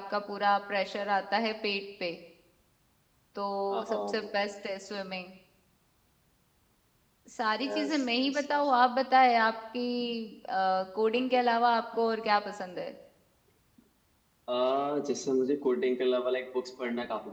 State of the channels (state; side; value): identical; both; correlation 1.00